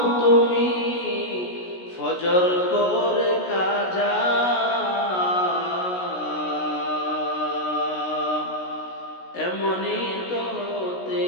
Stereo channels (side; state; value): right; late; 16 ms